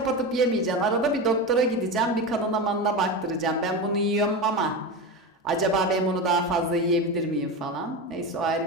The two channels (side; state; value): both; normal; correlation 0.21